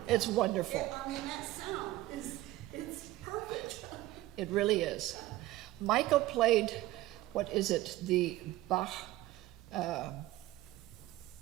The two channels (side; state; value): left; quieter; 16.5 dB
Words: It's wonderful. I mean, that sound it's perfect. It really is. Michael played, what is it, the Bach,